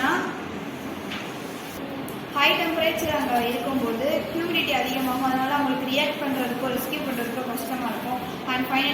ஹை டெம்பரேச்சர் அங்கே இருக்கும்போது ஹியூமிடிட்டி அதிகமாகும். அதனால அவங்களுக்கு ரியாக்ட் பண்ணுறதுக்கோ ரெஸ்கியூ பண்ணுறதுக்கோ கஷ்டமாக இருக்கும். அண்ட்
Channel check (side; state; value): both; identical; correlation 1.00